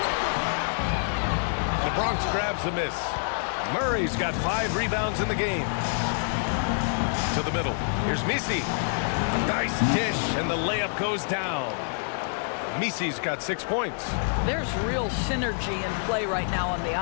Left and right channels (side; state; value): right; silent; digital silence